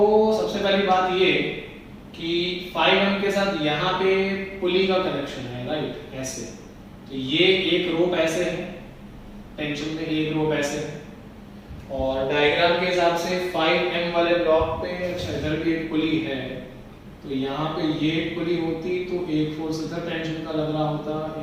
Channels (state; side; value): identical; both; correlation 1.00